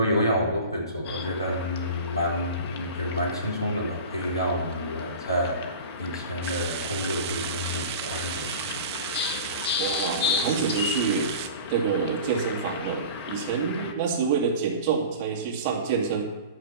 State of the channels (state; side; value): inverted; both; correlation -0.36